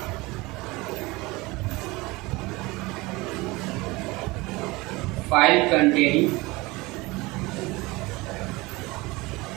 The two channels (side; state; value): left; quieter; 22.6 dB